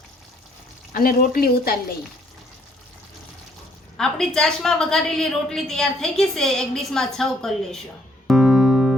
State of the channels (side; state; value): both; normal; correlation 0.66